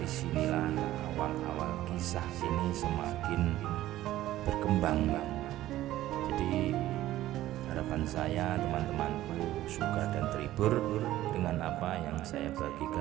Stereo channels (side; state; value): left; quieter; 14.6 dB